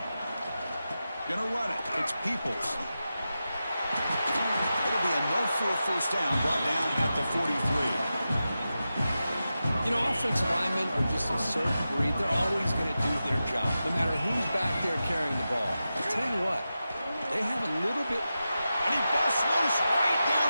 Gonna run it. It's Peoples. It'll be enough for a first down, brought down at the 43. You know, offensive linemen are just a certain breed. They're always going to do their job, no matter who's back there carrying the ball. I'll tell you what, they have a little bit... And he busts loose right down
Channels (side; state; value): both; inverted; correlation -0.92